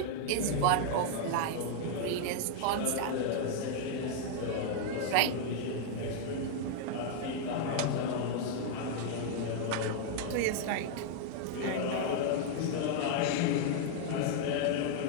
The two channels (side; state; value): both; different; correlation 0.00